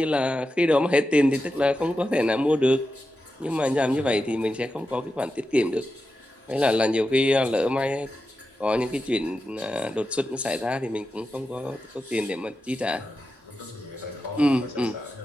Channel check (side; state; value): both; normal; correlation 0.90